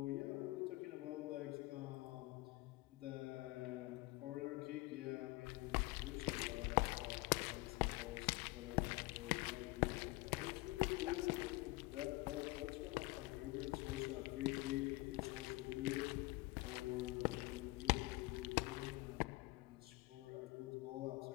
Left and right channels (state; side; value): quieter; right; 22.2 dB